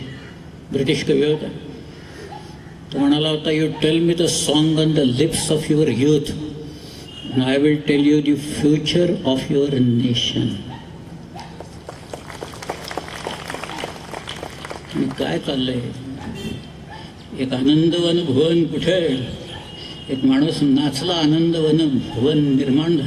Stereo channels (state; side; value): identical; both; correlation 1.00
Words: ब्रिटिश कवी होता. तो म्हणाला होता, you tell me the song on the lips of your youth, I will tell you the future of your nation. काय चाललंय? एक आनंदवन भुवन कुठे? एक माणूस नाचला, आनंदवन भुवन निर्माण